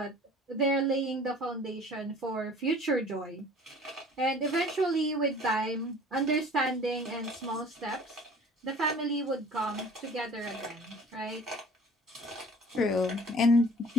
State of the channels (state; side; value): normal; both; correlation 0.48